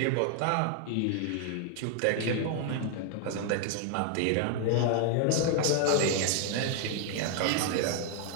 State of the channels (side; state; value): both; different; correlation 0.00